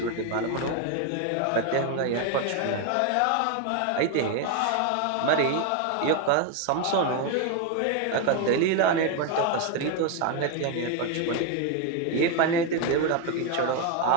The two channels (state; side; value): different; both; correlation 0.01